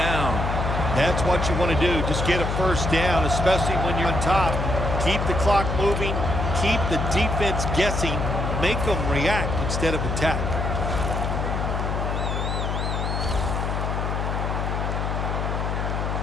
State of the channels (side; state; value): left; noise; hum, 1 dB below the sound